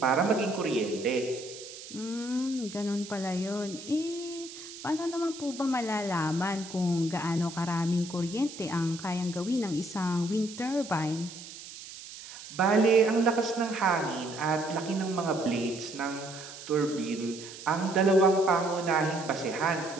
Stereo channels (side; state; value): right; noise; hiss, 14 dB below the sound